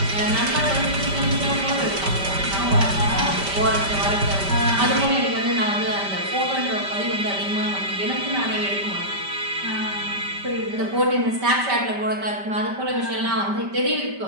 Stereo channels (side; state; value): left; late; 5.1 ms